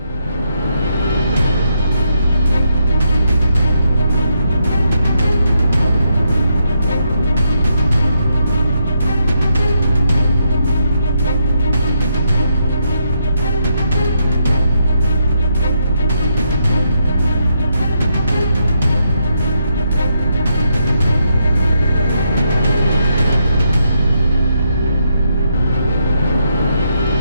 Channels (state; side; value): inverted; both; correlation -0.79